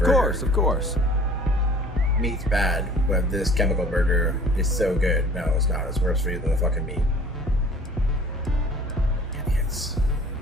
Of course. Meat's bad, but this chemical burger is so good. No, it's not. It's worse for you than the fucking meat. Idiots.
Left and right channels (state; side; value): normal; both; correlation 0.49